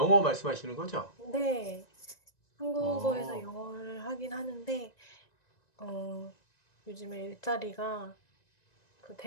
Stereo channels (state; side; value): late; right; 1.9 ms